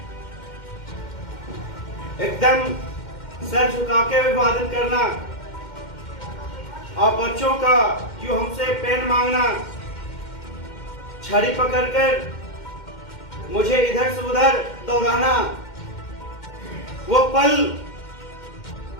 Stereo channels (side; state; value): right; late; 2.1 ms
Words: एकदम सर झुका के अभिवादन करना। आप बच्चों का जो हमसे पेन मांगना, छड़ी पकड़कर मुझे इधर से उधर दौड़ाना, वो पल